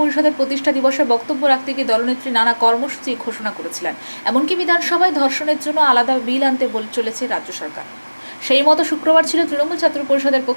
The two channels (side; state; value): both; inverted; correlation -1.00